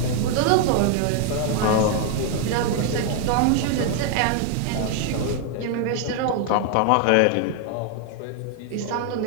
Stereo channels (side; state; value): both; different; correlation 0.00